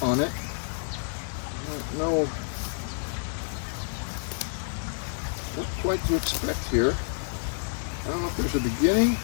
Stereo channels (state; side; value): silent; right; 59 dB below the other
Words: on it. I don't know what quite to expect here. I don't know if there's a beginning.